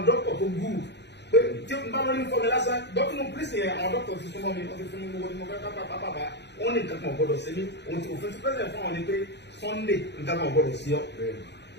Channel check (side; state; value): right; late; 0.50 ms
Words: dọ́kítọ̀ tó gúrù pé tí n bá lórí fọmi lásán dọ́kítọ̀ pírísì yẹn àwọn dọ́kítọ̀ ti súnmọ́ mi wọ́n ti fún mi gbogbo tí mo fẹ́ pápá wọ́n ní nǹkan kan ọ̀gbọ́dọ̀ ṣe mí òfin ti pẹ́sẹ̀ fún àwọn ni pé Sunday nǹkan kan ọ̀gbọ́dọ̀ sí ọ